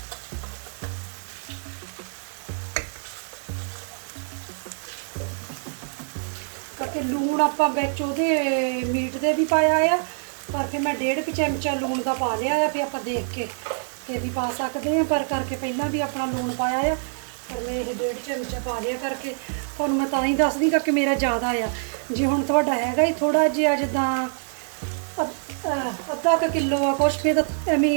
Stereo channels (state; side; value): silent; left; digital silence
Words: ਕਰਕੇ ਲੂਣ ਆਪਾਂ ਵਿੱਚ ਉਹਦੇ ਮੀਟ ਦੇ ਵੀ ਪਾਇਆ ਆ, ਪਰ ਫਿਰ ਮੈਂ 1.5 ਚਮਚਾ ਲੂਣ ਦਾ ਪਾ ਲਿਆ ਆ, ਫਿਰ ਆਪਾਂ ਦੇਖ ਕੇ ਤੇ ਵੀ ਪਾ ਸਕਦੇ ਆ, ਪਰ ਕਰਕੇ ਪਹਿਲਾਂ ਵੀ ਆਪਣਾ ਲੂਣ ਪਾਇਆ ਆ, ਪਰ ਮੈਂ ਇਹ 1.5 ਚਮਚਾ ਪਾ ਲਿਆ ਕਰਕੇ ਤੁਹਾਨੂੰ ਮੈਂ ਤਾਂ ਹੀ ਦੱਸਦੀ ਕਿ ਮੇਰਾ ਜ਼ਿਆਦਾ ਆ। ਜੇ ਹੁਣ ਤੁਹਾਡਾ ਹੈਗਾ ਹੀ ਥੋੜਾ ਜਿਹਾ ਜਿੱਦਾਂ ਅੱਧਾ ਕੁ ਕਿਲੋ ਆ ਕੁਛ, ਫਿਰ ਤਾਂ